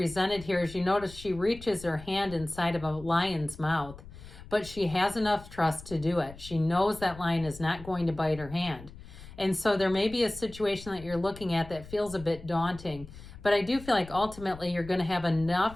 here. As you notice, she reaches her hand inside of a lion's mouth, but she has enough trust to do it. She knows that lion is not going to bite her hand. And so there may be a situation that you're looking at that feels a bit daunting. But I do feel like ultimately you're going to have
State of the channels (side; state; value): left; noise; rumble, 16 dB below the sound